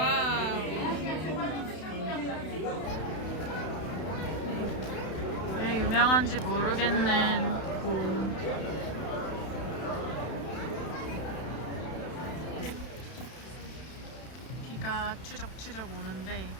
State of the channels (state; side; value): late; right; 32 ms